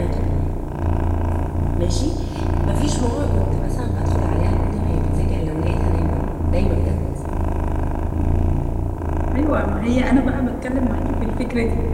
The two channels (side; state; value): both; identical; correlation 1.00